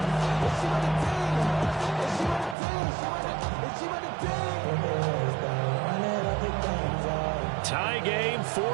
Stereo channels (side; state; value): left; drops out; at 2.6 s